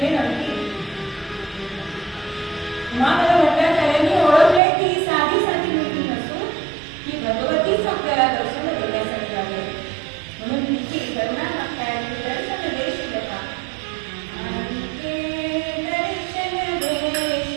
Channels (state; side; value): drops out; left; at 4.6 s